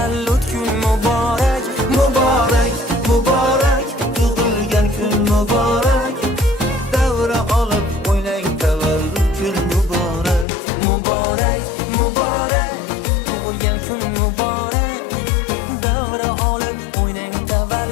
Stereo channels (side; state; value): right; drops out; at 10.5 s